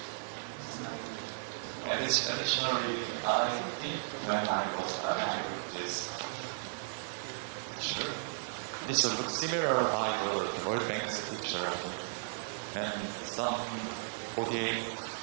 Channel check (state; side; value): silent; left; 54 dB below the other